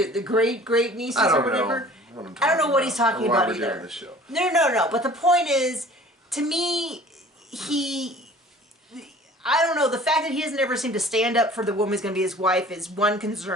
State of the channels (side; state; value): both; normal; correlation 0.47